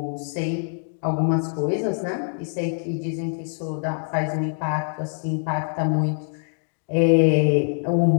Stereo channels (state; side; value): silent; right; digital silence